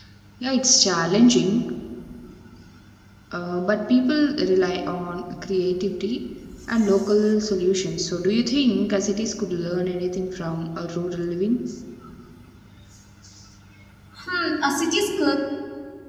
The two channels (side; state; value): both; identical; correlation 1.00